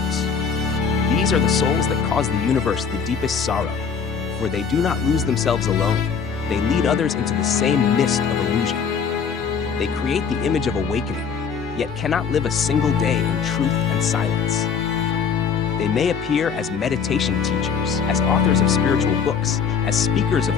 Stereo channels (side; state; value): right; quieter; 6.3 dB